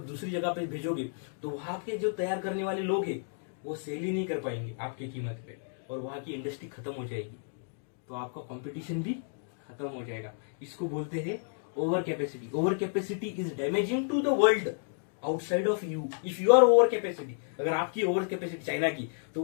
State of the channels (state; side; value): silent; right; digital silence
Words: दूसरी जगह पे भेजोगे तो वहां के जो तैयार करने वाले लोग हैं वो सेल ही नहीं कर पाएंगे आपकी कीमत पे, और वहां की इंडस्ट्री खत्म हो जाएगी। तो आपका कंपटीशन भी खत्म हो जाएगा। इसको बोलते हैं over capacity. Over capacity is damaging to the world outside of you. If you are over capacity, अगर आपकी ओवर कैपेसिटी चाइना की, तो